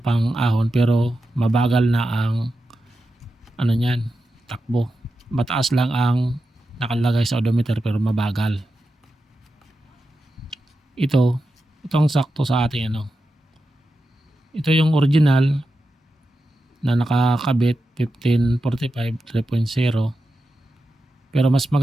pang-ahon pero mabagal na ang niyan, takbo. Mataas lang ang nakalagay sa odometer pero mabagal. Itong sakto sa ating Ito yung original na nakakabit 1545 3.0. Pero mas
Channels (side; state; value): both; normal; correlation 0.90